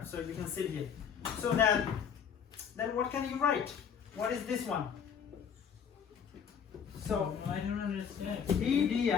so you can sit here. So then what can you write? What is this one? So I don't understand. E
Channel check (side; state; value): right; quieter; 7.3 dB